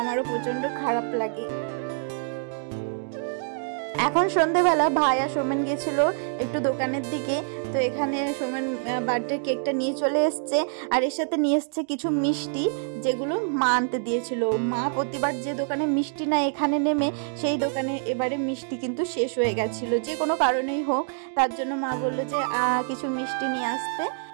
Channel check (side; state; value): left; silent; digital silence